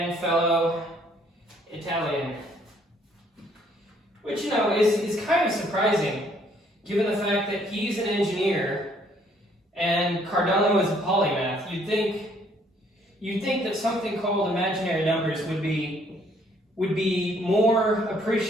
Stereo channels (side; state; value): both; normal; correlation 0.64